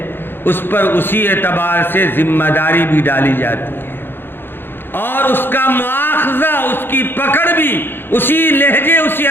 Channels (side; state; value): right; late; 0.10 ms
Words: اس پر اسی اعتبار سے ذمہ داری بھی ڈالی جاتی ہے، اور اس کا مواخذہ، اس کی پکڑ بھی اسی لہجے، اسی